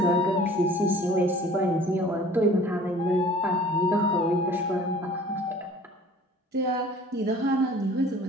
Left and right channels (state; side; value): normal; both; correlation 0.49